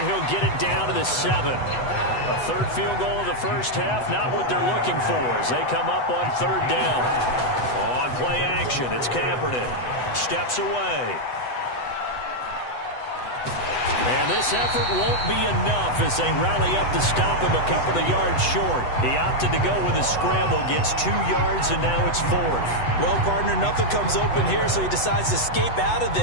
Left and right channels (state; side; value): late; right; 8.0 ms